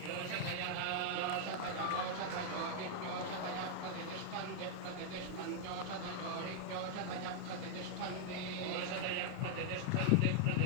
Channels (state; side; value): different; both; correlation 0.00